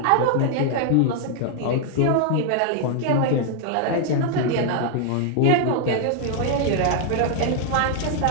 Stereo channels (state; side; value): different; both; correlation 0.00